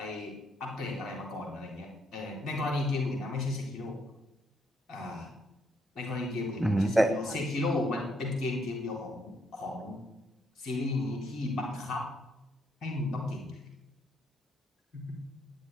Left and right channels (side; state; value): both; normal; correlation 0.73